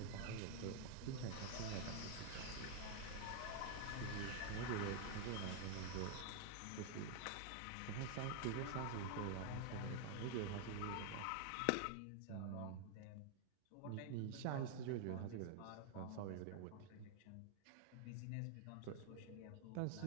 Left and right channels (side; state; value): both; different; correlation 0.00